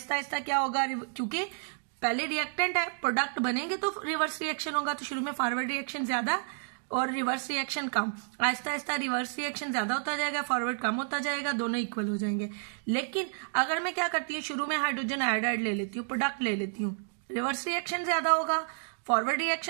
आहिस्ता क्या होगा, क्योंकि पहले रिएक्टेंट है, प्रोडक्ट बनेंगे तो रिवर्स रिएक्शन होगा, तो शुरू में फॉरवर्ड रिएक्शन ज्यादा और रिवर्स रिएक्शन कम। आहिस्ता आहिस्ता रिवर्स रिएक्शन ज्यादा होता जाएगा, फॉरवर्ड कम होता जाएगा, दोनों इक्वल हो जाएंगे। लेकिन अगर मैं क्या करती हूँ, शुरू में हाइड्रोजन आयोडाइड ले लेती हूँ, प्रोडक्ट ले लेती हूँ, रिवर्स रिएक्शन ज्यादा होगा, फॉरवर्ड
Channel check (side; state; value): left; silent; digital silence